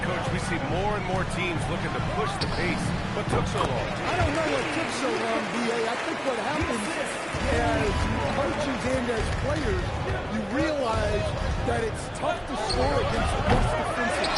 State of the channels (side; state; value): both; identical; correlation 1.00